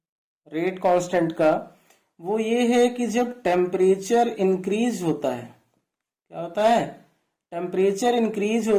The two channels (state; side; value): identical; both; correlation 1.00